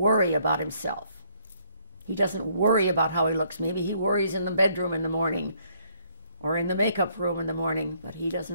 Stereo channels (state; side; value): inverted; both; correlation -0.67